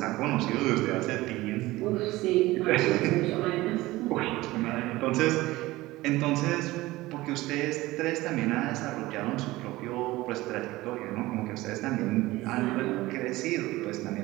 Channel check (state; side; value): quieter; left; 18.7 dB